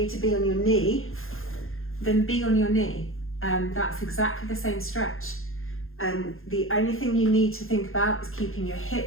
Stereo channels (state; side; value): late; right; 0.60 ms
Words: to be on your knee, then be on your knee. That's exactly the same stretch. The only thing you need to think about is keeping your